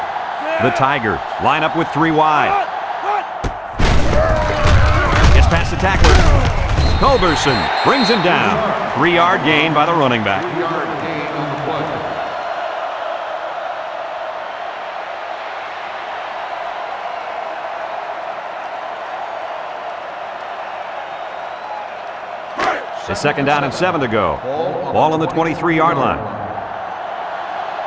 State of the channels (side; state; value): both; identical; correlation 1.00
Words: The Tigers line up with 3 wide. Gets past the tackler. Culberson brings him down. 3-yard gain by the running back. 3-yard gain on the play. It's 2nd down and 7 to go. Ball on the 23-yard line.